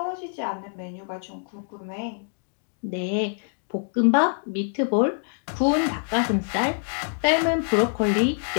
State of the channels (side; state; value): right; silent; digital silence